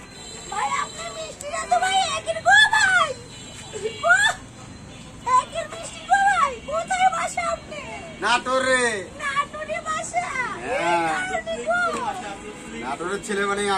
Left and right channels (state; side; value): identical; both; correlation 1.00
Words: ভাই আপনার মিষ্টিটা তো ভাই একের গো ভাই, একের মিষ্টি গো ভাই। কোথায় বাসা আপনি? নাটোরে। নাটোরে বাসা? নাটোরের ছেলে মানে